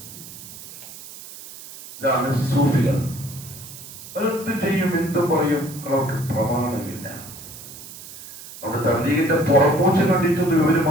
ഇതാണ് സൂഫികൾ. അവരെന്ത് ചെയ്യും, എന്തും പറയും, അവർക്ക് പ്രമാണമില്ല. നമ്മുടെ തബ്ലീഗിന്റെ പുറമൂച്ച കണ്ടിട്ടൊന്നും ഇവര്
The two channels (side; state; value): right; noise; hiss, 15 dB below the sound